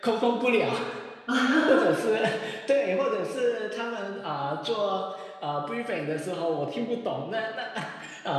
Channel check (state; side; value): identical; both; correlation 1.00